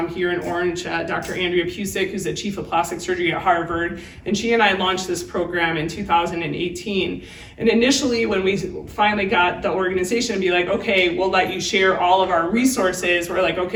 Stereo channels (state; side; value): identical; both; correlation 1.00